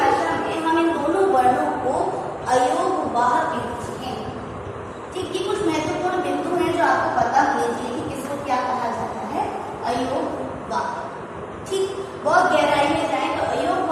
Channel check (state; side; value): identical; both; correlation 1.00